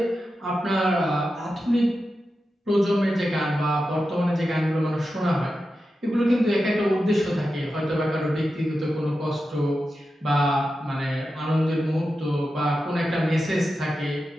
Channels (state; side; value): normal; both; correlation 0.91